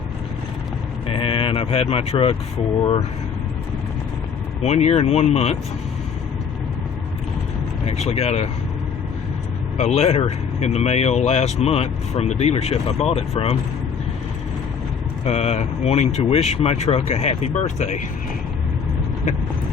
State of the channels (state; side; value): quieter; right; 6.5 dB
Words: and I've had my truck for 1 year and 1 month. I actually got a letter in the mail last month from the dealership I bought it from, wanting to wish my truck a happy birthday.